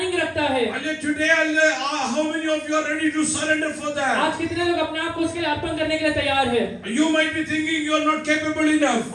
रखता है. Hallelujah. Today, hallelujah, how many of you are ready to surrender for that? आज कितने लोग अपने आप को उसके लिए अर्पण करने के लिए तैयार हैं? You might be thinking you are not capable enough.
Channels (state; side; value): identical; both; correlation 1.00